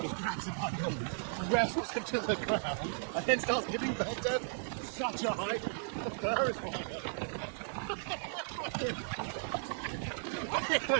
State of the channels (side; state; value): left; silent; digital silence